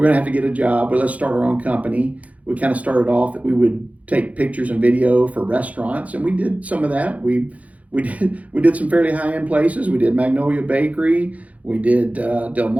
going to have to get a job. But let's start our own company. We kind of started off that we would take pictures and video for restaurants, and we did some of that. We did some fairly high end places. We did Magnolia Bakery. We did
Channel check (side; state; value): left; late; 0.068 ms